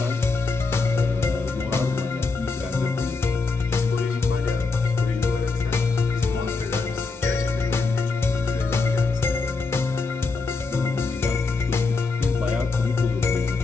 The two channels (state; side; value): quieter; right; 4.0 dB